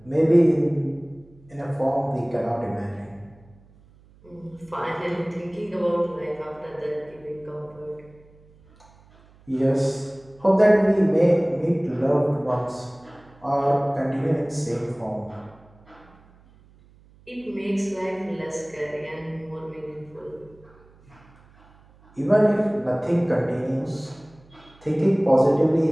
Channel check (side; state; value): right; noise; hum, 27 dB below the sound